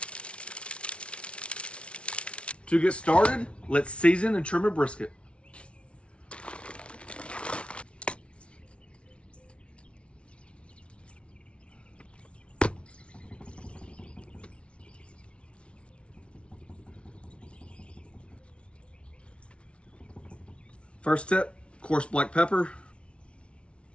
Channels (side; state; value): right; late; 0.060 ms